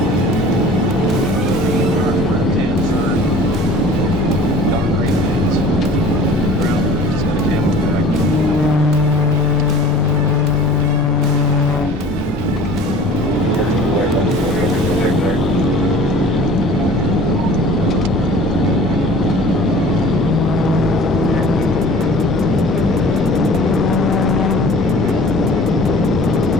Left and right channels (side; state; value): both; normal; correlation 0.45